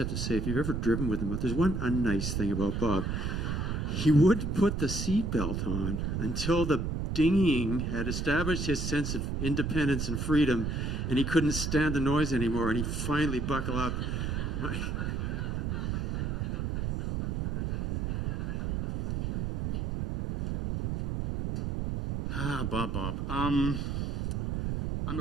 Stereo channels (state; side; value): noise; right; rumble, 1 dB below the sound